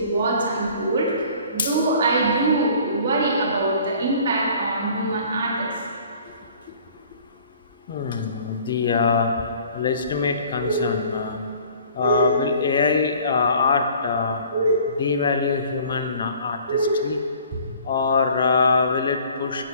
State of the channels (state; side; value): inverted; both; correlation -0.52